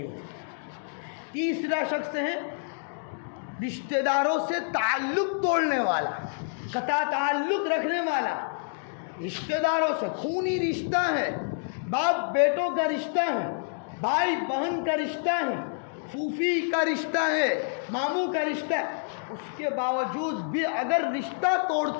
ہوتی۔ تیسرا شخص ہے رشتہ داروں سے تعلق توڑنے والا، قطع تعلق رکھنے والا، رشتہ داروں سے خونی رشتہ ہے، باپ بیٹوں کا رشتہ ہے، بھائی بہن کا رشتہ ہے، پھوپھی کا رشتہ ہے، ماموں کا رشتہ ہے، اس کے باوجود بھی اگر رشتہ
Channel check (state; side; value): silent; right; digital silence